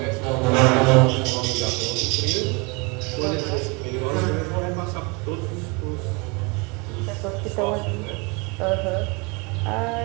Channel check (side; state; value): left; quieter; 28.3 dB